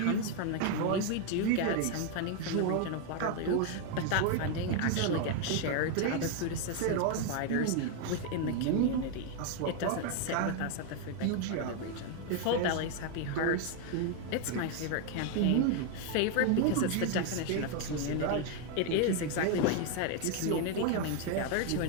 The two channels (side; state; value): both; different; correlation 0.01